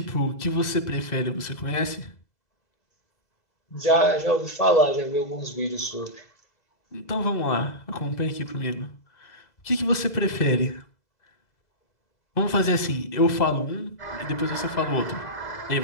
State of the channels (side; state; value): right; late; 2.0 ms